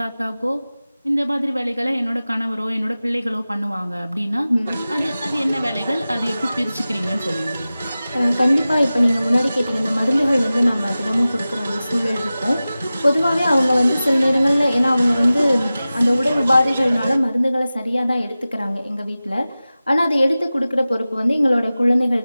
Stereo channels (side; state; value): both; inverted; correlation -0.96